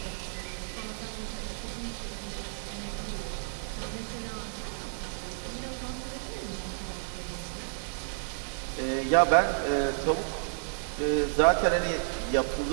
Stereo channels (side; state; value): left; silent; 56 dB below the other